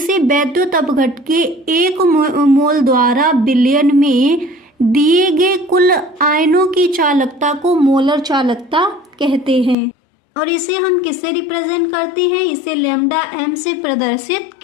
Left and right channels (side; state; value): right; drops out; at 9.8 s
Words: विद्युत अपघट्य के एक मोल द्वारा विलयन में दिए गए कुल आयनों की चालकता को मोलर चालकता कहते हैं। और इसे हम किससे रिप्रेजेंट करते हैं, इसे लैम्डा एम से प्रदर्शित